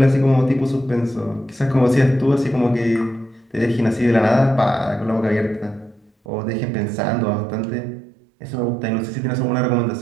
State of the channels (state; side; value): drops out; left; at 6.1 s